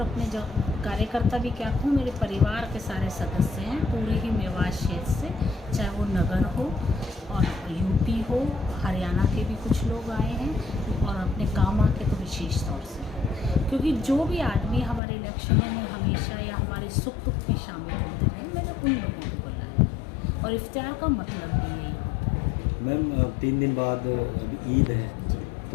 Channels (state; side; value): drops out; right; at 15.0 s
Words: अपने जो कार्यकर्ता भी क्या कहूँ, मेरे परिवार के सारे सदस्य हैं पूरे ही मेवात क्षेत्र से, चाहे वो नगर हो और यूपी हो, हरियाणा के भी कुछ लोग आए हैं और अपने कामा के तो विशेष तौर से, क्योंकि जो भी आदमी हमारे इलेक्शनों में हमेशा या हमारे सुख दुख में शामिल होते रहे, मैंने उन लोगों को बुलाया और इफ्तियार का मतलब भी यही होता है। मैम 3 दिन बाद अभी ईद है,